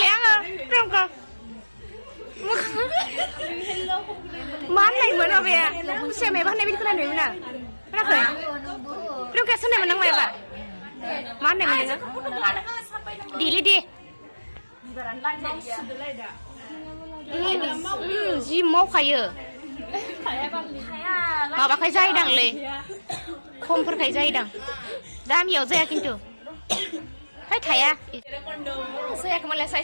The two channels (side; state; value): both; inverted; correlation -1.00